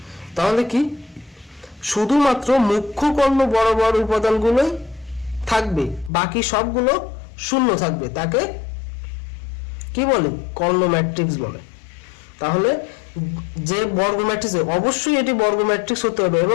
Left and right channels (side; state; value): right; drops out; at 6.1 s